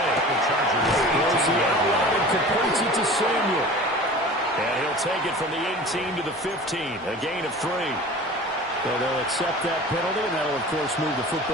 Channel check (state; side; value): normal; both; correlation 0.39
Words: Throws the outline and completes it to Samuel. And he'll take it from the 18 to the 15. A gain of 3. So they'll accept that penalty, and that'll, of course, move the